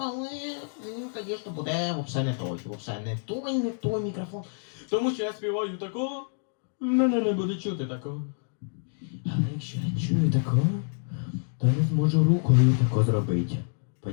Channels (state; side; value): silent; right; digital silence